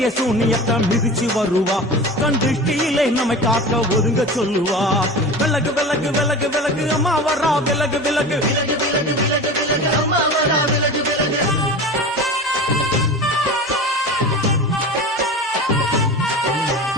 சூனியத்தை மிதிச்சு வருவா கண் திருஷ்டியிலே நம்மை காக்க ஒதுங்க சொல்லுவா விலகு விலகு விலகு விலகு அம்மா வரா விலகு விலகு அம்மா வரா விலகு விலகு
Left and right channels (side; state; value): both; normal; correlation 0.33